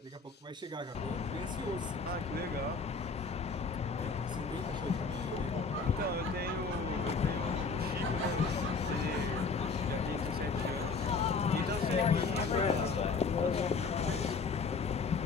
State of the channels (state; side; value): quieter; right; 4.6 dB